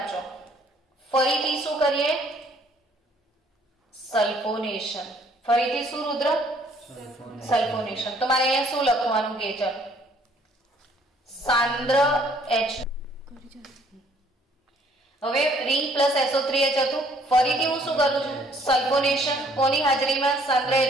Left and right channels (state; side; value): normal; both; correlation 0.62